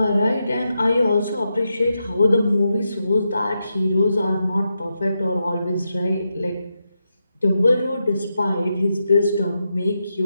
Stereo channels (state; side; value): inverted; both; correlation -0.86